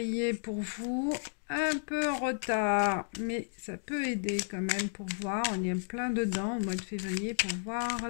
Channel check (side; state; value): right; silent; digital silence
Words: pour vous. Un peu en retard, mais ça peut aider quand même pour voir. On est en plein dedans au mois de février pour voir